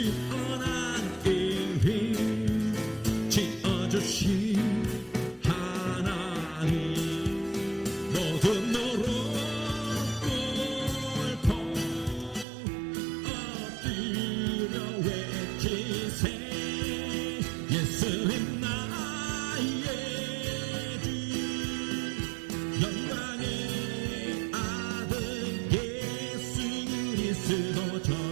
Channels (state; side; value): drops out; left; at 12.5 s